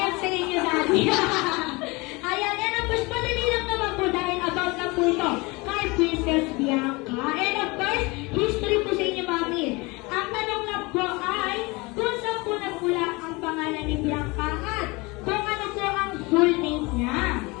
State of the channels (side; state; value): right; quieter; 25.1 dB